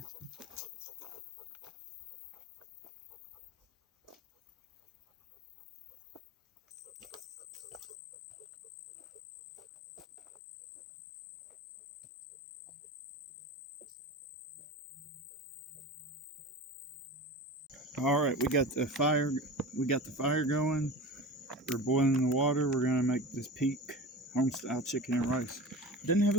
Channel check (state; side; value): normal; both; correlation 0.32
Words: All right, we got the fire. We got the fire going. We're boiling the water. We're gonna make this peak home-style chicken and rice. It doesn't have